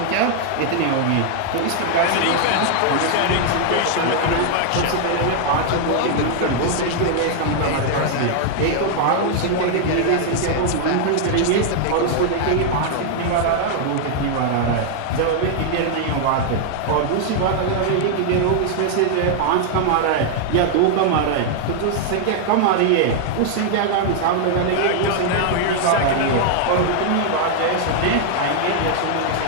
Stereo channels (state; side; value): different; both; correlation 0.00